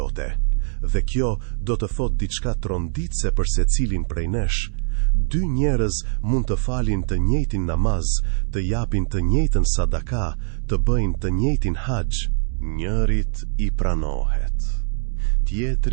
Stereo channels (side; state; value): left; silent; 64 dB below the other